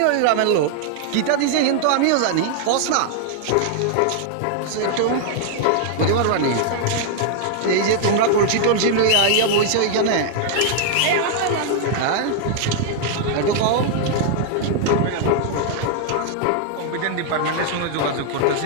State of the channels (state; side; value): different; both; correlation 0.00